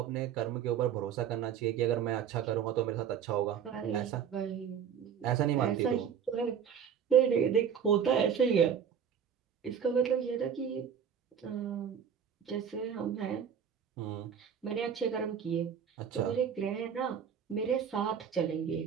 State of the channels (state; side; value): quieter; left; 8.0 dB